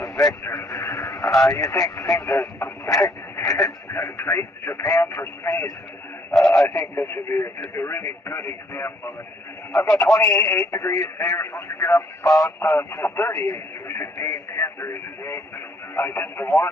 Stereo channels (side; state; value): both; normal; correlation 0.66